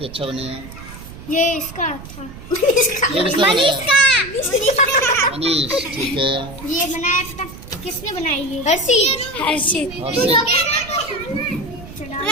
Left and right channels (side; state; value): right; noise; rumble, 15 dB below the sound